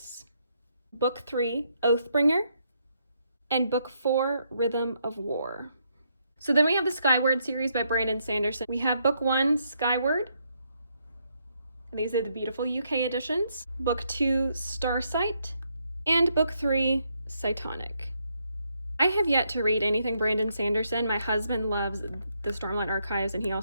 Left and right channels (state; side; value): inverted; both; correlation -0.76